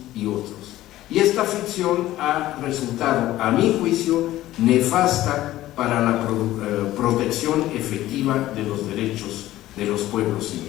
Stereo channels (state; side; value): quieter; right; 15.1 dB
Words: y otros. Y esta ficción ha resultado, a mi juicio, nefasta para la protección efectiva de los derechos de los pueblos